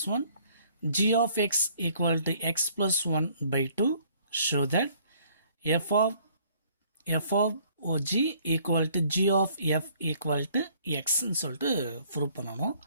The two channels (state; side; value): inverted; both; correlation -0.61